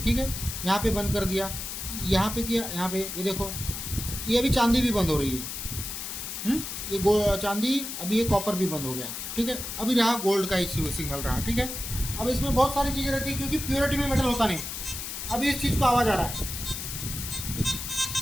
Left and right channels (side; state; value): left; noise; hiss, 6 dB below the sound